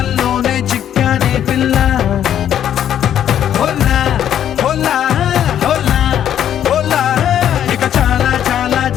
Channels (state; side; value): quieter; right; 10.2 dB